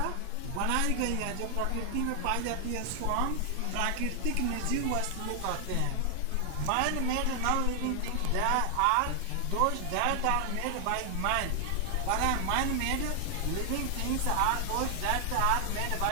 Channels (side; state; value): both; different; correlation 0.00